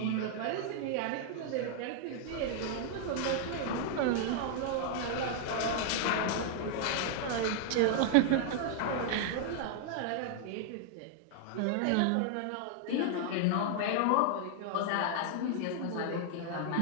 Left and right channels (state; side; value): different; both; correlation 0.00